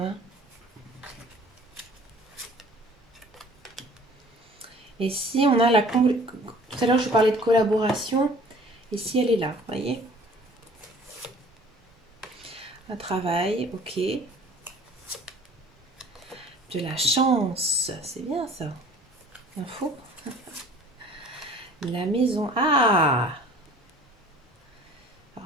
Et si on a la... Tout à l'heure, je parlais de collaboration. Et si elle est là, vous voyez? Un travail, ok. De la chance, c'est bien ça. Info. La maison. Ah!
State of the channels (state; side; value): normal; both; correlation 0.50